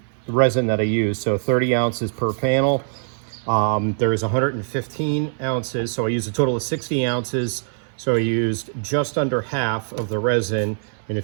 resin that I use. So 30 ounces per panel. There is 115 ounces, so I used a total of 60 ounces. So I used just under half of the resin, and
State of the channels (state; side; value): silent; left; digital silence